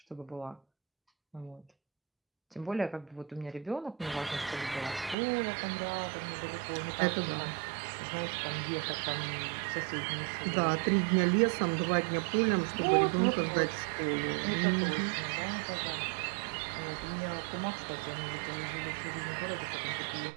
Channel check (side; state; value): left; drops out; at 5.2 s